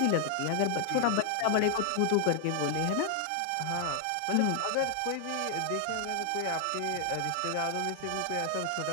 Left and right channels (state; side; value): different; both; correlation 0.00